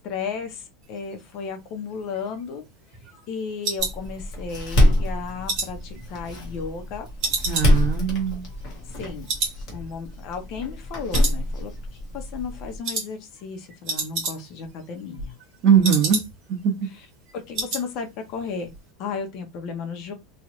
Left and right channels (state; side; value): normal; both; correlation 0.47